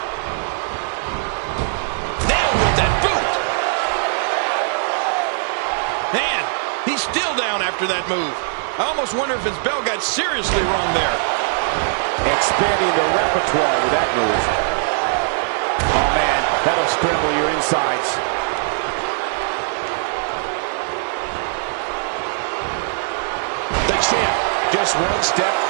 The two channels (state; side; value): silent; left; 56 dB below the other